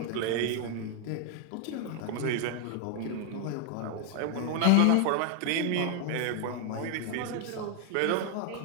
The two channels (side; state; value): both; different; correlation 0.00